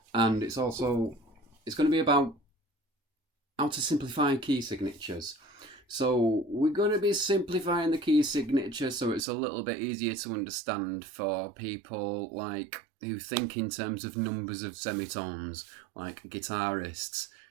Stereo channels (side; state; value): left; drops out; at 9.2 s